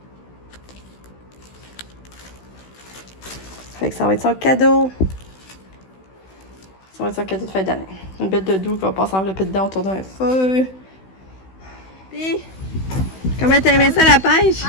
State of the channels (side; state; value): right; late; 16 ms